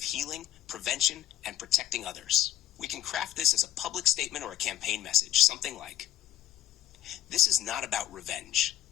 healing, prevention, and protecting others. We can craft this as a public statement or a campaign message, something like, "This is not about revenge.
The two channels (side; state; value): right; quieter; 12.6 dB